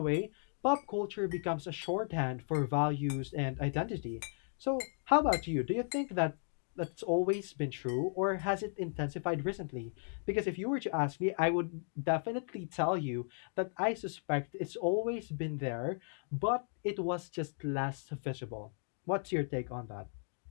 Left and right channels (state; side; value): silent; right; 54 dB below the other